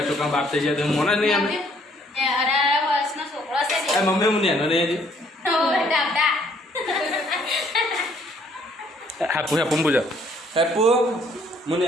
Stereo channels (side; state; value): both; normal; correlation 0.64